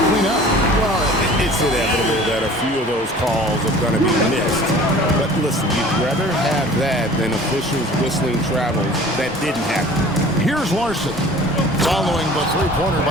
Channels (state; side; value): normal; both; correlation 0.45